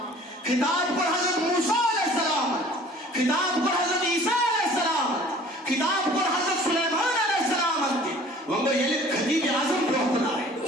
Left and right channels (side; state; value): both; normal; correlation 0.49